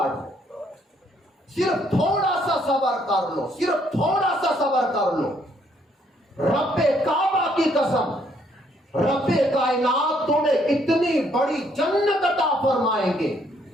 پہ؟ صرف تھوڑا سا صبر کر لو، صرف تھوڑا سا صبر کر لو۔ رب کعبہ کی قسم، رب کائنات تمہیں اتنی بڑی جنت عطا فرمائیں گے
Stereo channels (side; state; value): both; normal; correlation 0.68